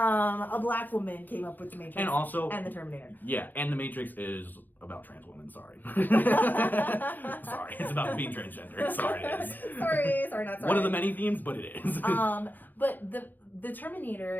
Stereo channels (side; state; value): right; late; 0.087 ms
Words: black woman came up with the Matrix And also, and the Terminator. Yeah, and the Matrix is about trans women. Sorry. Sorry, it's about being transgender. Sorry, it is. Sorry, not sorry. One of the many themes, but it is. But the Terminator,